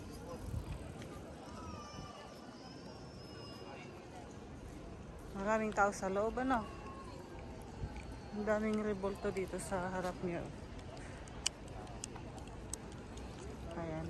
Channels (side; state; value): both; identical; correlation 1.00